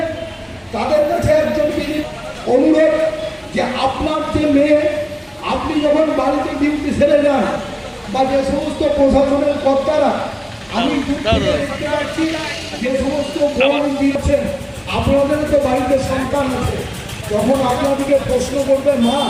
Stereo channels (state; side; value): identical; both; correlation 1.00